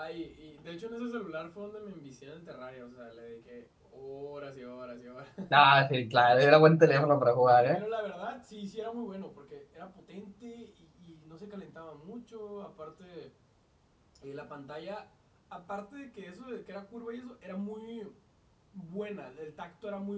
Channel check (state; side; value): identical; both; correlation 1.00